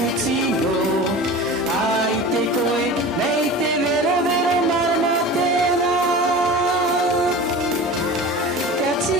no. Ai te koe, mei te vero vero marama tēnā. Ka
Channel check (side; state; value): both; normal; correlation 0.34